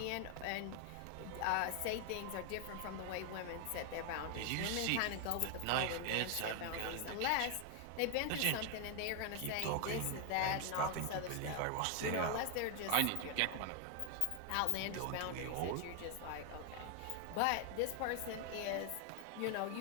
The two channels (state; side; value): different; both; correlation 0.00